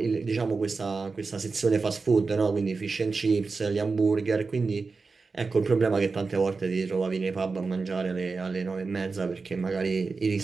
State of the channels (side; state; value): left; quieter; 4.3 dB